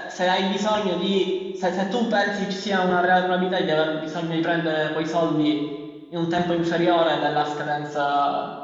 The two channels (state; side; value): identical; both; correlation 1.00